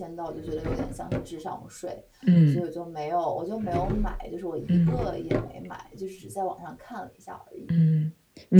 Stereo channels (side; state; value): both; identical; correlation 1.00